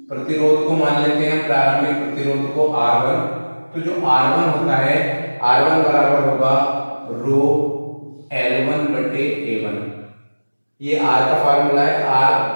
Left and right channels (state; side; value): inverted; both; correlation -1.00